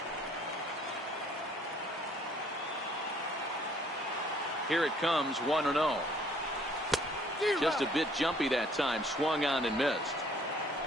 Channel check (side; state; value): both; normal; correlation 0.60